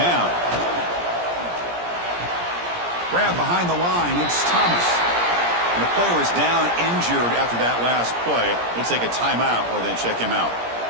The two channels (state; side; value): late; left; 17 ms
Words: Grab behind the line. It's Thomas. And the player is down injured after that last play. We'll take a timeout while they check him out.